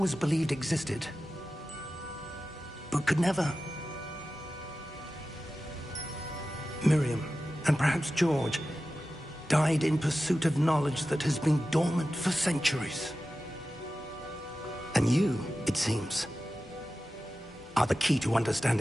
believed existed, but could never. Miriam, and perhaps George, died in pursuit of knowledge that has been dormant for centuries. And you, it seems, are the key to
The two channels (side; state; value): both; normal; correlation 0.94